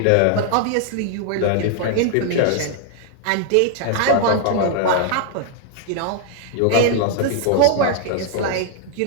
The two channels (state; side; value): different; both; correlation -0.01